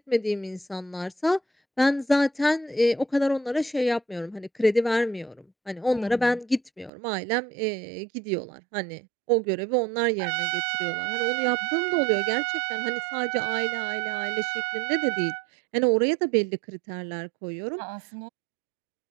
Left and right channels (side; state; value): left; drops out; at 6.9 s